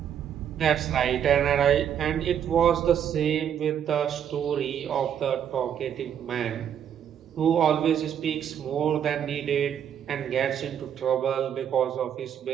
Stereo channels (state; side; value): quieter; left; 9.0 dB